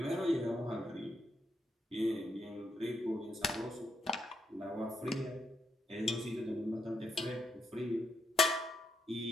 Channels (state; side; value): normal; both; correlation 0.79